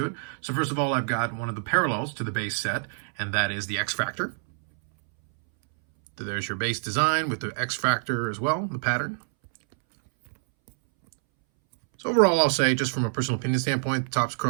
it. So first of all, I've got one of the parallels to the base set, and that is the X Factor. So there's your base design with the X Factor as well, the pattern. So overall, I'll say, just from a personal opinion standpoint, Topps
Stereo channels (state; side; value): silent; left; 61 dB below the other